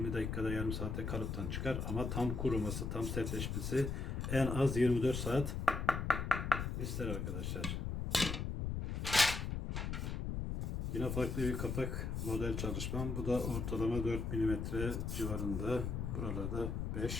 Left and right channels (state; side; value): noise; left; rumble, 2 dB below the sound